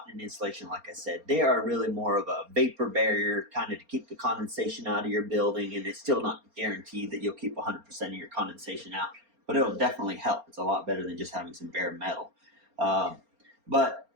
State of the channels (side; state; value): left; late; 4.3 ms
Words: an insulation, like I said. They are really more of a vapor barrier, kind of to keep the condensation out of your building, and it's still not guaranteed that you'll keep 100% of your condensation out, but it'll definitely help. It's a lot better than just having some bare metal. But,